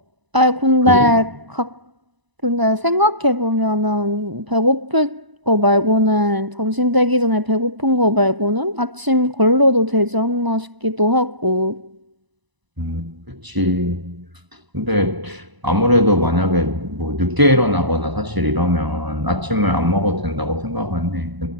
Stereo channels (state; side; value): late; left; 1.0 ms